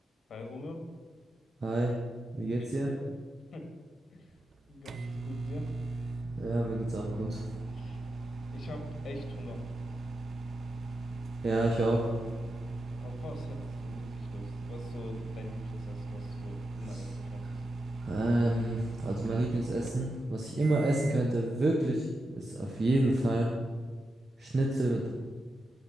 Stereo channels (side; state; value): both; normal; correlation 0.88